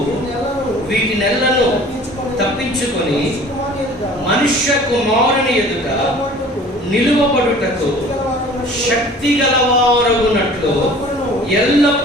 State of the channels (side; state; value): both; normal; correlation 0.47